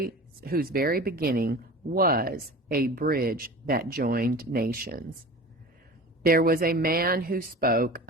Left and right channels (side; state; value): both; normal; correlation 0.36